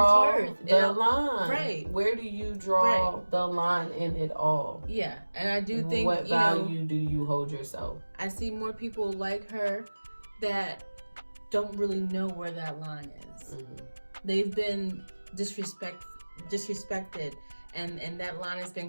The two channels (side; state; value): both; inverted; correlation -1.00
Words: self-worth. the line. Right. Where do you draw the line in it all? Yeah, and I do think, what value do you hold yourself? I see more people like her that don't really know where that line is. They've been disrespected, and that line has been